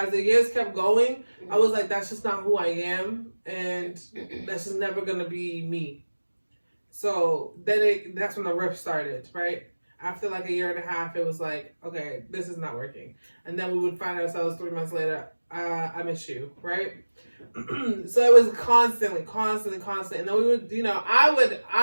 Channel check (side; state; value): both; inverted; correlation -1.00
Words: the years kept going, I was like, that's just not who I am, and that's just never gonna be me. So then that's when the rift started, right? After like a year and a half, it was like, okay, this is not working. And then we would find ourselves 3 months later, I miss you, right? So it was constantly. And then we would,